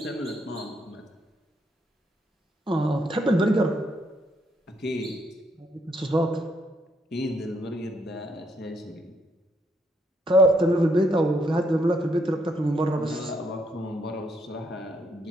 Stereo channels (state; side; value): normal; both; correlation 0.74